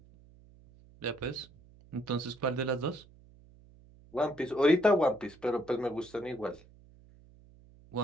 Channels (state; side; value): noise; right; hum, 25 dB below the sound